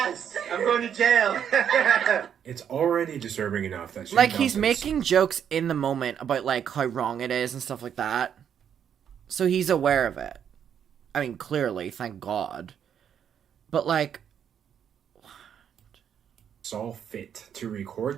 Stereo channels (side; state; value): left; quieter; 8.6 dB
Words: I'm going to jail. It's already disturbing enough that Shane Like, he's Dawson's- making jokes in the moment about, like, how wrong it is and stuff like that. So he's aware of it. I mean, clearly, thank God. But, like... saw fit to